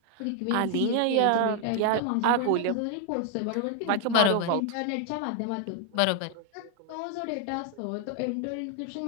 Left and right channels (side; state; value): both; different; correlation 0.00